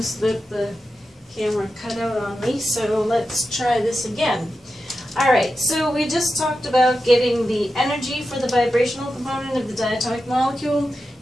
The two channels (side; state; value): both; normal; correlation 0.91